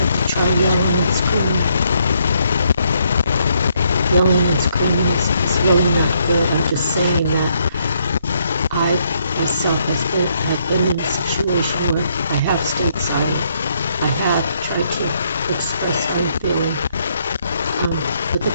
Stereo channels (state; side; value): inverted; both; correlation -0.73